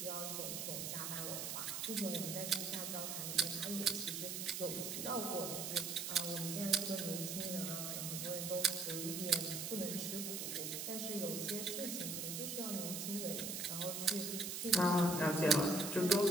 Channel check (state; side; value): noise; right; hiss, 4 dB below the sound